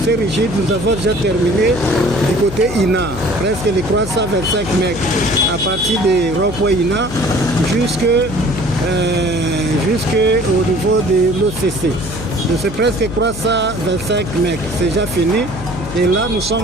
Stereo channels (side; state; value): left; noise; hum, 10 dB below the sound